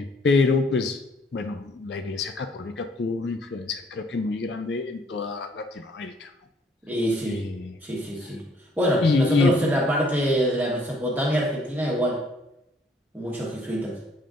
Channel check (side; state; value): both; normal; correlation 0.63